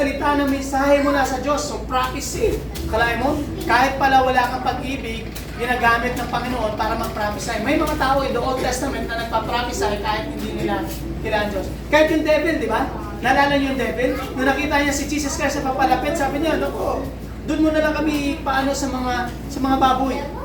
ng mensahe mula sa Diyos, so prophecy. Kalahin mo, kahit pala wala kang pag-ibig, ginagamit ng Panginoon para mag-prophesy. May mga tao in the Old Testament na nagpa-prophesy kahit hindi nila kailangan Diyos. Kahit yung devil, di ba? Naalala niyo yung devil? Nung nakita niya si Jesus Christ sa papalapit, sabi niya, naku, doon mo na lang kami paano sa mga baboy.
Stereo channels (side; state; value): both; identical; correlation 1.00